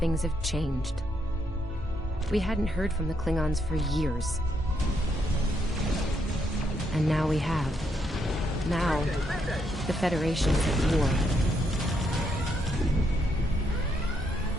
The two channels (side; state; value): both; normal; correlation 0.76